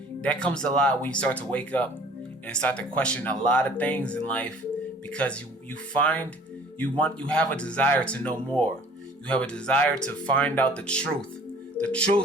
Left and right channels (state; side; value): normal; both; correlation 0.51